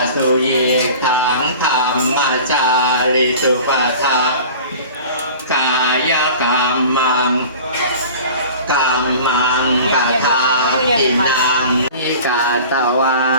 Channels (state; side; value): inverted; both; correlation -0.40